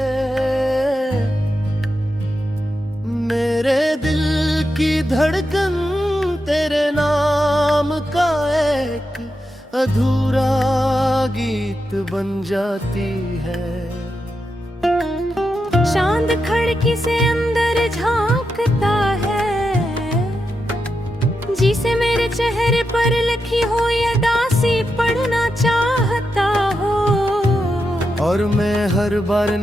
मेरे दिल की धड़कन तेरे नाम का एक अधूरा गीत बन जाती है। चांद खिड़की से अंदर झांकता है, जिसे मेरे चेहरे पर लिखी हो ये दासी पढ़ना चाहता हो। और मैं हर बार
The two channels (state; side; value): normal; both; correlation 0.87